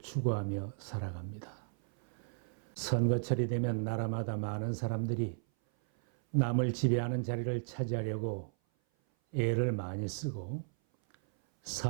살아갑니다. 선거철이 되면 나라마다 많은 사람들이 남을 지배하는 자리를 차지하려고 애를 많이 쓰고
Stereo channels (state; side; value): silent; left; 55 dB below the other